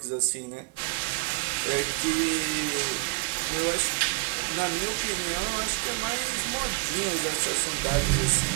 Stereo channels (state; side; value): quieter; left; 28.7 dB